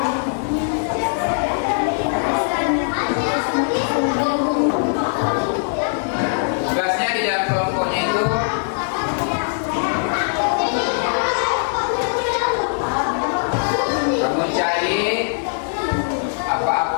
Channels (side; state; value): right; silent; digital silence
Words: Tugasnya di dalam kelompoknya itu kamu cari